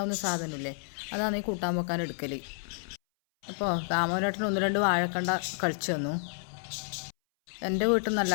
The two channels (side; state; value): right; silent; 58 dB below the other